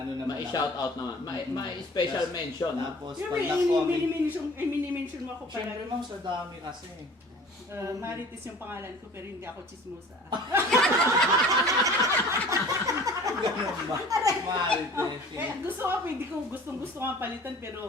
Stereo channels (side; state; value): both; normal; correlation 0.46